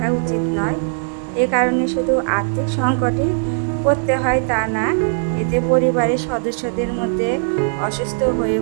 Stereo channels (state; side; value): silent; left; digital silence